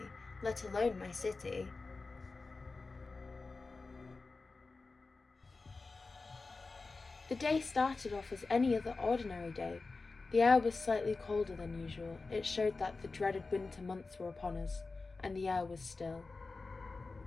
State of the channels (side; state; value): right; quieter; 3.8 dB